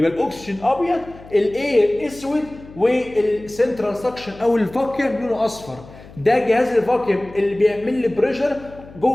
الاكسجين ابيض، الاير اسود، والسنترال سكشن او الفاكيوم لونه اصفر. ده جهاز الفاكيوم اللي بيعمل لي بريشر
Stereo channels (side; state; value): left; noise; hum, 19 dB below the sound